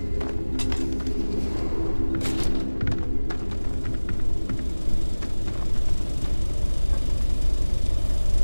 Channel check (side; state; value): both; inverted; correlation -1.00